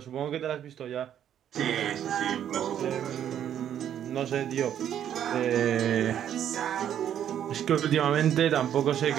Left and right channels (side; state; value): left; quieter; 10.0 dB